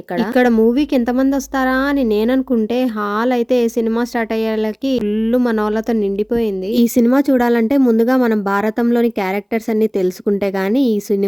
ఇక్కడ. ఇక్కడ మూవీకి ఎంతమంది వస్తారా అని నేననుకుంటే హాల్ అయితే సినిమా స్టార్ట్ అయ్యేలకి ఫుల్ మనోళ్ళతో నిండిపోయింది. ఈ సినిమా చూడాలంటే ముందుగా మనం భారతంలోని క్యారెక్టర్స్ అన్ని తెలుసుకుంటే గానీ ఈ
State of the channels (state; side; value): identical; both; correlation 1.00